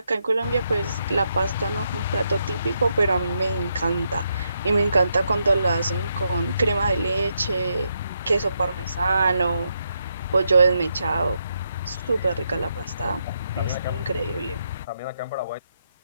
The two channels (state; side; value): inverted; both; correlation -0.80